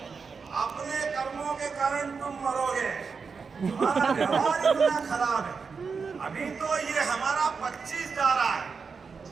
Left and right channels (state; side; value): quieter; left; 5.3 dB